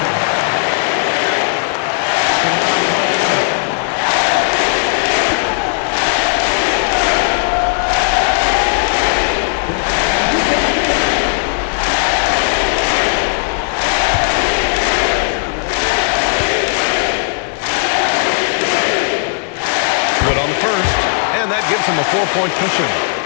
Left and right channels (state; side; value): silent; right; 70 dB below the other